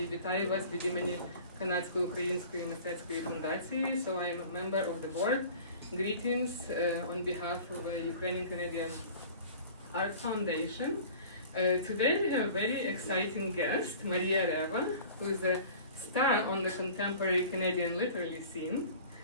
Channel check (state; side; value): inverted; both; correlation -0.43